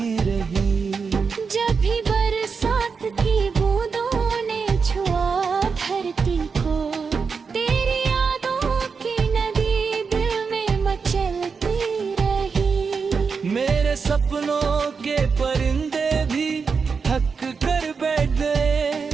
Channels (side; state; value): left; quieter; 5.4 dB